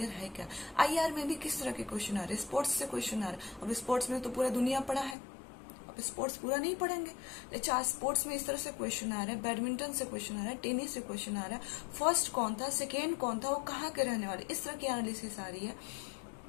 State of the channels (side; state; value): right; drops out; at 5.2 s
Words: है क्या? आईआर में भी किस तरह के क्वेश्चन आ रहे हैं? स्पोर्ट्स से क्वेश्चन आ रहा है। अब स्पोर्ट्स में तो पूरा दुनिया पड़ा है, स्पोर्ट्स पूरा नहीं पढ़ेंगे। अच्छा स्पोर्ट्स में इस तरह से क्वेश्चन आ रहा है, बैडमिंटन से क्वेश्चन आ रहा है, टेनिस से क्वेश्चन आ रहा है, फर्स्ट कौन था, सेकेंड कौन था, वो कहाँ के रहने वाले, इस तरह की एनालिसिस आ रही है।